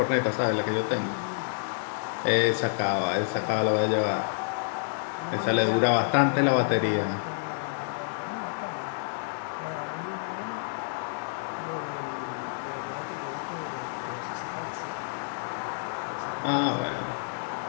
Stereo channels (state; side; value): silent; right; digital silence